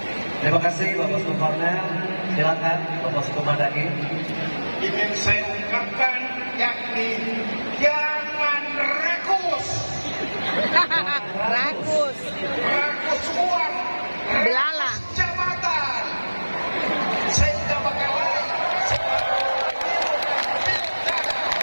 Terima kasih Bapak Uskup Cornel. Silakan Bapak Uskup Madani. Ini yang saya ungkapkan yakni jangan rakus Rakus. uang, Belala. jabatan, sehingga bakalan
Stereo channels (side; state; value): both; inverted; correlation -1.00